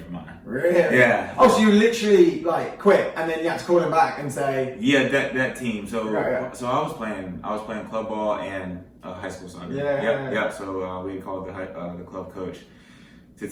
our mind. Really? Yeah. Oh, so you literally quit, and then you had to call him back and say. Yeah, that team. So So I was playing club ball and high school soccer. Yeah. So we had called the club coach to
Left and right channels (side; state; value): both; identical; correlation 1.00